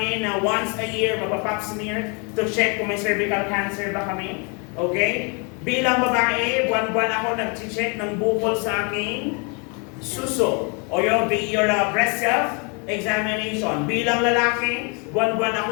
na once a year magpa-pap smear to check kung may cervical cancer ba kami. Okay? Bilang babae, buwan-buwan ako nag-check ng bukol sa aking suso. O your breast self-examination. Bilang lalaki, buwan-buwan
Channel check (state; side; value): quieter; right; 34.1 dB